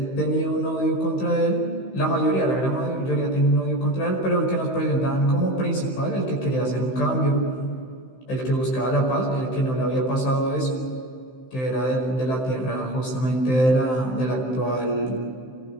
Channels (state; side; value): late; right; 15 ms